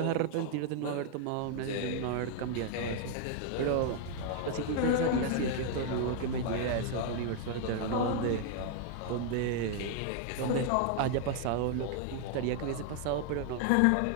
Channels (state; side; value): different; both; correlation 0.00